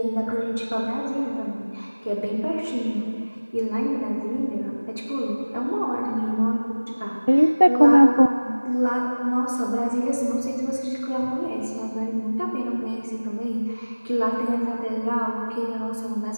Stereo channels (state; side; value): inverted; both; correlation -1.00